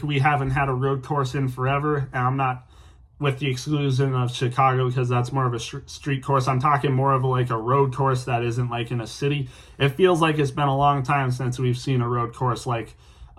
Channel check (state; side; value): identical; both; correlation 1.00